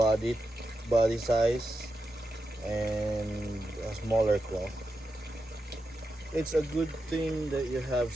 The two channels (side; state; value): both; normal; correlation 0.88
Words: size and a smaller claw. It's a good thing that you have